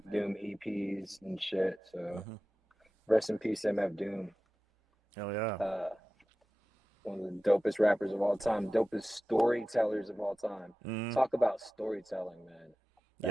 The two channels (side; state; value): both; normal; correlation 0.95